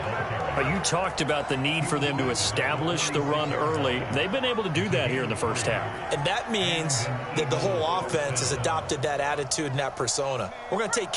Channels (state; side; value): identical; both; correlation 1.00